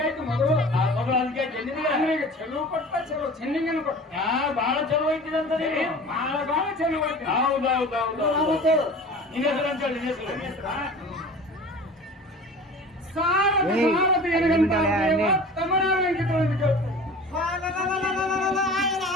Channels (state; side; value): normal; both; correlation 0.40